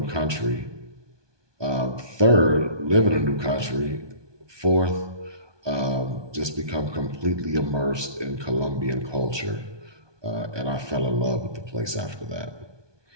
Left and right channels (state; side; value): late; left; 1.2 ms